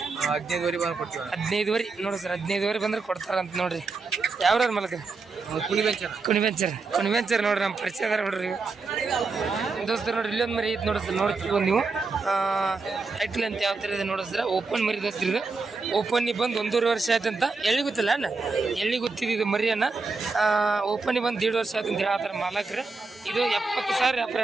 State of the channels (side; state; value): left; quieter; 4.1 dB